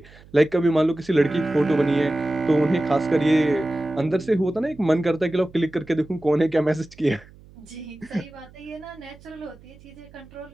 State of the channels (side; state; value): right; noise; hum, 23 dB below the sound